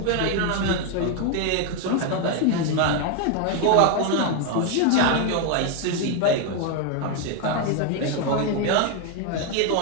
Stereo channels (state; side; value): different; both; correlation 0.01